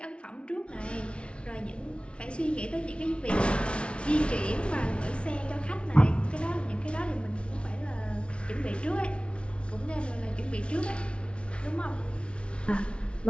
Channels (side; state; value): right; late; 0.059 ms